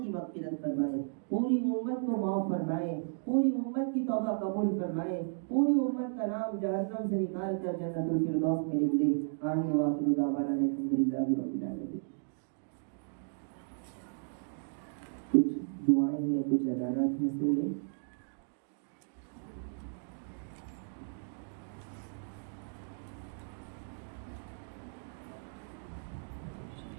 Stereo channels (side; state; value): left; silent; digital silence